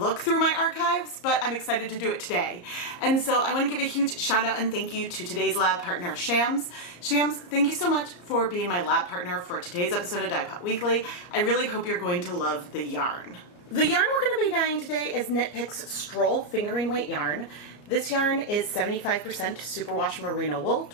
through my archives, but I'm excited to do it today. And so I want to give a huge shout out and thank you to today's lab partner, Shams. Shams, thank you so much for being my lab partner for today's episode of Dyepot Weekly. I really hope you're going to love the yarn. The yarn we're going to be dyeing today is Knit Picks Stroll Fingering Weight yarn. This yarn is 75% superwash merino wool,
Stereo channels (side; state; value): right; late; 34 ms